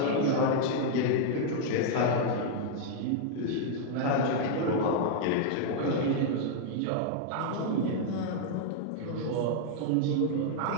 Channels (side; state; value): both; different; correlation -0.01